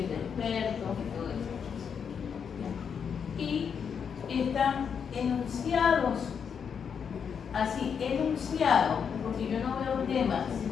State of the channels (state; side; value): quieter; right; 7.0 dB